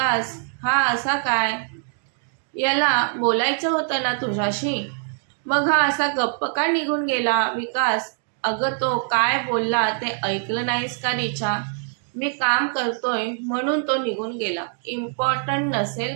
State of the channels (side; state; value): left; silent; 61 dB below the other